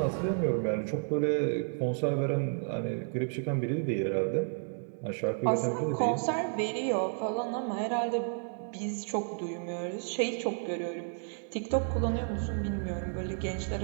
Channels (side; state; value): left; silent; digital silence